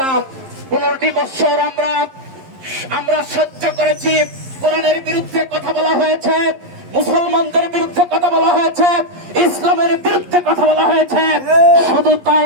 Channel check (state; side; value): late; left; 11 ms